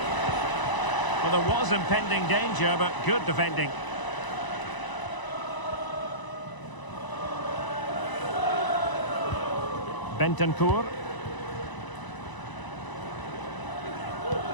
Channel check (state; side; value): late; right; 1.0 ms